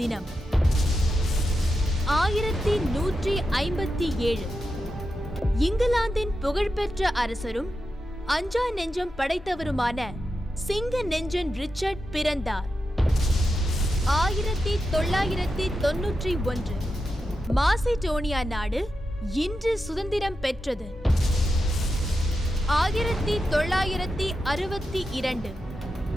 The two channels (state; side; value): normal; both; correlation 0.89